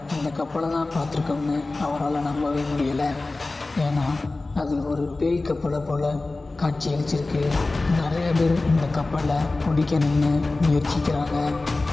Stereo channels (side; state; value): right; quieter; 3.2 dB